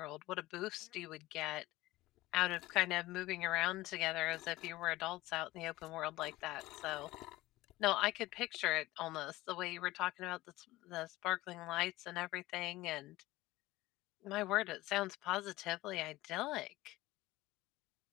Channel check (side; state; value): right; quieter; 18.1 dB